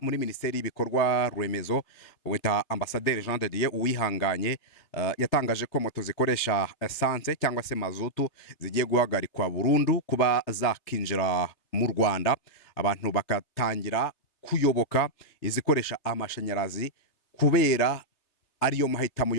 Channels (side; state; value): right; late; 3.3 ms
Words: muri minisiteri y'ibikorwa remezo wita Ambasaderi Jean de Dieu Uwihanganye yatangaje ko moto zikoresha essence cyangwa se mazutu zigiye guhagarikwa burundu kuba zakinjira mu Rwanda, abantu bakatangira kuyoboka izikoresha amashanyarazi kubera ariyo mahitamo